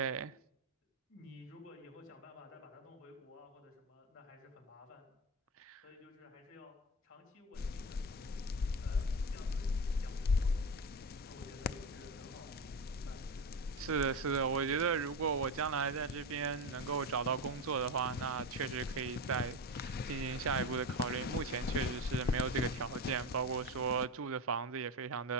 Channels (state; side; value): normal; both; correlation 0.19